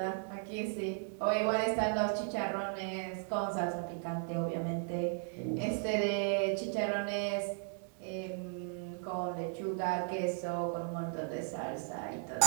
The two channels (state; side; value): silent; left; 54 dB below the other